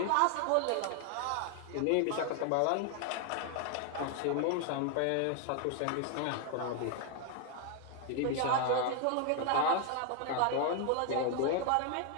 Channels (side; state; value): both; different; correlation 0.00